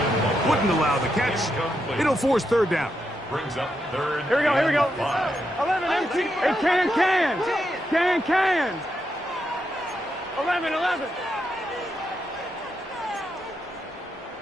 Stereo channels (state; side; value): normal; both; correlation 0.83